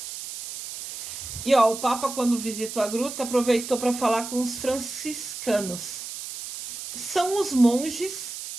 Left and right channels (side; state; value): right; noise; hiss, 9 dB below the sound